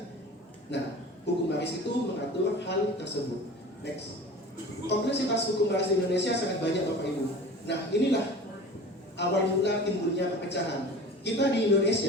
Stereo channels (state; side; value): normal; both; correlation 0.39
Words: Nah, hukum waris itu mengatur hal tersebut. Next. Kompleksitas hukum waris di Indonesia sangat banyak Bapak Ibu. Nah, inilah awal mula timbulnya perpecahan. Kita di